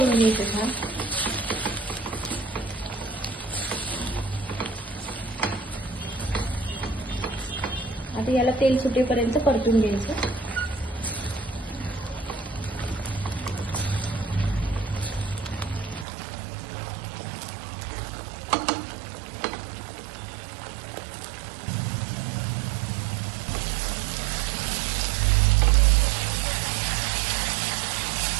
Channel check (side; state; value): left; drops out; at 16.1 s